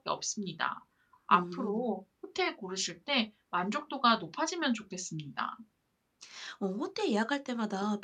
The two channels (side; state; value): both; identical; correlation 1.00